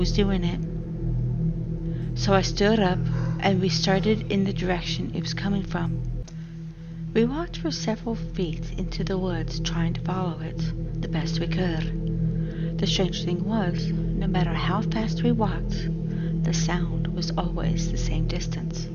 doing it. So I stood up and we started in the direction it was coming from. We walked for several feet into the woods trying to follow it the best we could. The strange thing was, no matter how fast we walked, the sound was always the same distance.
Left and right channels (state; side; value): identical; both; correlation 1.00